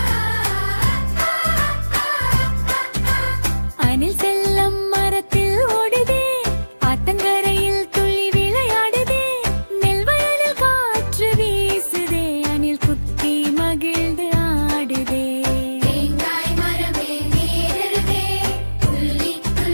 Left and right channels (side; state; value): both; inverted; correlation -1.00